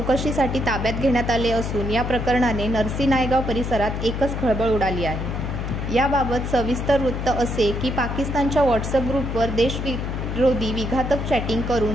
ताब्यात घेण्यात आले असून या प्रकरणाने नरसी नायगाव परिसरात एकच खळबळ उडाली आहे. याबाबत सविस्तर वृत्त असे की पाकिस्तानच्या व्हॉट्सअप ग्रुपवर देशविरोधी विघातक चॅटिंग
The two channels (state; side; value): noise; left; hum, 3 dB below the sound